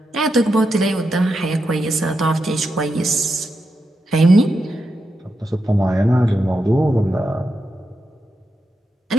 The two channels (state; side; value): normal; both; correlation 0.86